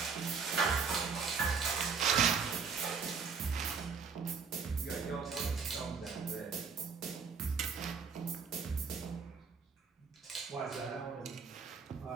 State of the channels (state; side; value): quieter; left; 5.6 dB